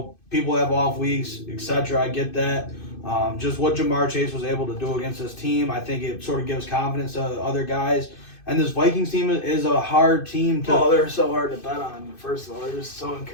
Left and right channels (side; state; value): right; late; 2.6 ms